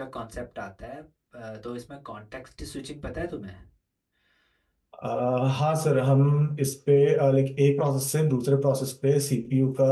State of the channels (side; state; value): both; identical; correlation 1.00